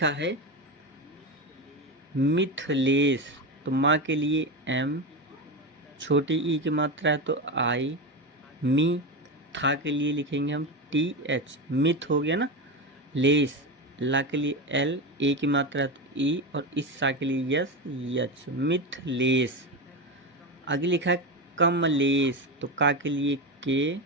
है मिथिलेश, तो माँ के लिए M, छोटी ई की मात्रा है तो I, मी, था के लिए लिखेंगे हम TH, मिथ हो गया ना। लेस, ला के लिए L, ए की मात्रा है तो ई, और इस सा के लिए यस, यच, मिथलेश। आगे लिखा है कमलेश, तो का के लिए के,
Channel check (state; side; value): normal; both; correlation 0.18